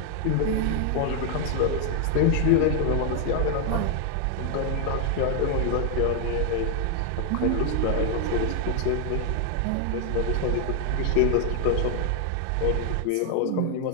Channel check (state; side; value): different; both; correlation 0.00